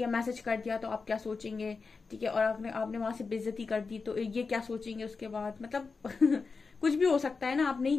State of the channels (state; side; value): quieter; right; 4.6 dB